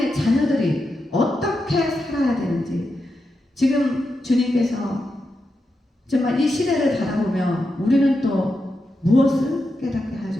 자녀들이 지금 주님께서 정말 이 시대를 바라보며 우리는 또 무엇을 깨닫게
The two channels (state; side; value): normal; both; correlation 0.87